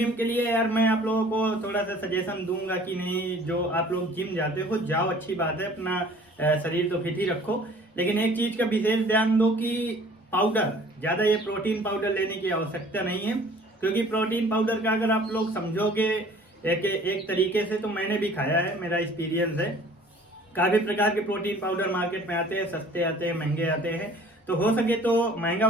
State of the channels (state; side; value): normal; both; correlation 0.51